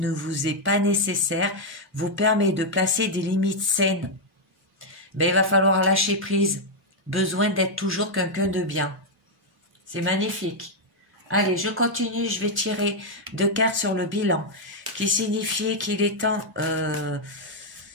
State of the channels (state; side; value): normal; both; correlation -0.01